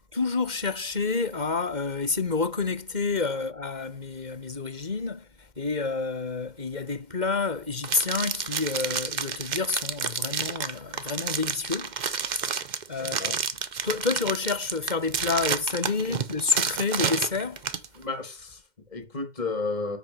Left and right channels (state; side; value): late; left; 2.1 ms